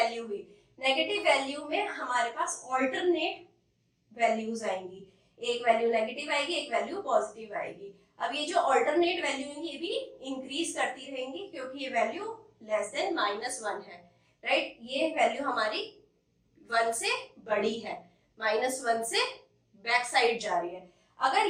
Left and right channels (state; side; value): identical; both; correlation 1.00